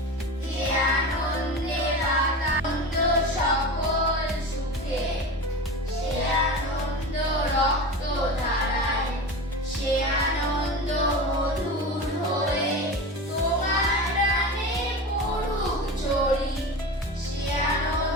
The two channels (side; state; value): both; normal; correlation 0.28